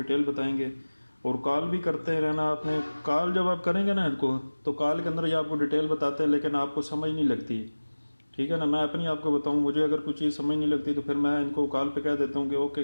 बताएंगे, और कॉल भी करते रहना। आपने कॉल जब आप करेंगे ना इनको, तो कॉल के अंदर ये आपको डिटेल बताते हैं, लेकिन आपको समझ नहीं लगती। ठीक है ना, मैं अपनी आपको बताऊं, मुझे अगर कुछ चीज़ समझ नहीं लगती तो फिर मैं इनको कॉल पे कह देता हूँ कि ओके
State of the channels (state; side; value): inverted; both; correlation -1.00